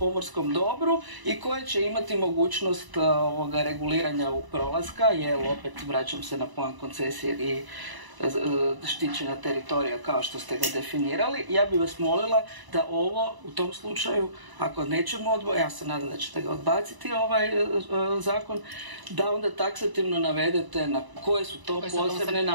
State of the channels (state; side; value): late; left; 1.0 ms